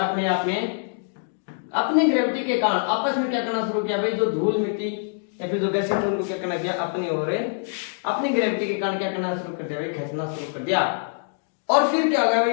आप में अपनी ग्रेविटी के कारण आपस में क्या करना शुरू किया भाई, जो धूल मिट्टी या फिर जो गैसें थे उनको क्या करना किया, अपनी ओर अपनी ग्रेविटी के कारण क्या करना शुरू कर दिया भाई, खींचना शुरू कर दिया। और फिर क्या हो गया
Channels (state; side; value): silent; right; digital silence